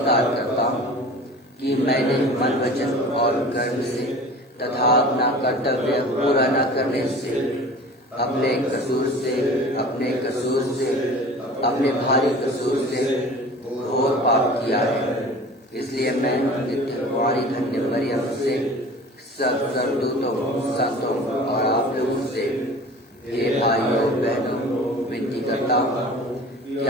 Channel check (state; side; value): normal; both; correlation 0.41